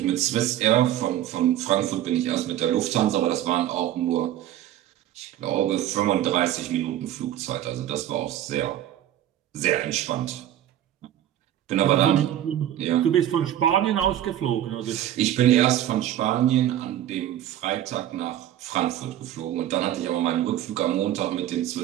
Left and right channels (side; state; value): left; quieter; 12.1 dB